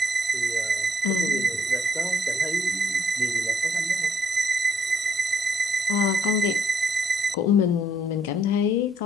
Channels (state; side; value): normal; both; correlation 0.70